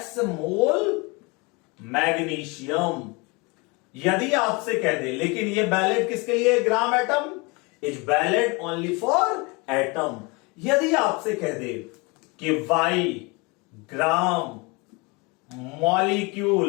mole magnesium. यदि आपसे कह दे, लेकिन ये वैलिड किसके लिए? Gram atom is valid only for atom. यदि आपसे कह दे कि वाई ग्राम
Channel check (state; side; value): quieter; right; 27.7 dB